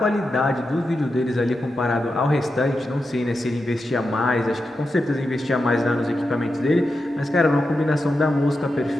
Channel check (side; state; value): both; normal; correlation 0.89